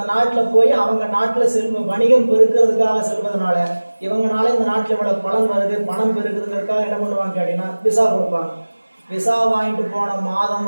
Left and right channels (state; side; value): inverted; both; correlation -1.00